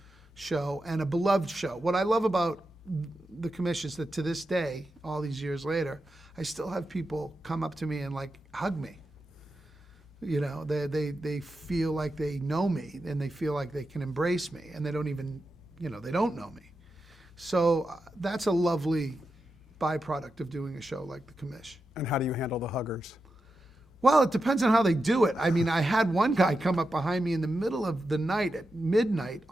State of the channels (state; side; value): normal; both; correlation 0.89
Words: show and a beloved show. What I love about the commission is that to this day, all these years later, I still have people come up to me and hug me. They feel like they know me, and they feel like they can embrace me, and they don't even, they don't know me. So that's a lovely byproduct of doing a show like the commish. And how do you handle the huggers? Well, it depends on how they do it. I mean, I had one guy come up behind me in the middle of the night at midnight